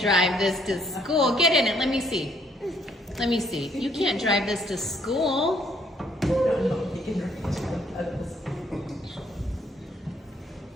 drive this to school. Get in it. Let me see. Let me see. You can't drive this to school.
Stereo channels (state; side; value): normal; both; correlation 0.67